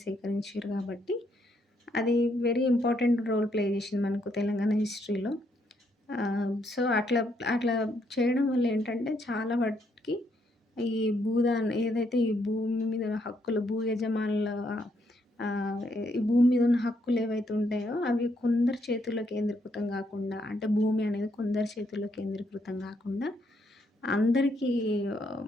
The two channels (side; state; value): both; normal; correlation 0.74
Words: సేకరించిర్రు కాబట్టి, అది వెరీ ఇంపార్టెంట్ రోల్ ప్లే చేసింది మనకు తెలంగాణ హిస్టరీలో. సో, అట్లా అట్లా చేయడం వల్ల ఏంటంటే చాలా వాటికి ఈ ఏదైతే ఈ భూమి మీద హక్కులు భూ యజమానుల ఈ భూమి మీద ఉన్న హక్కులు ఏవైతే ఉంటాయో అవి కొందరి చేతుల్లో కేంద్రీకృతం గాకుండా, అంటే భూమి అనేది కొందరి చేతుల్లో కేంద్రీకృతం గాకుండా అందరికీ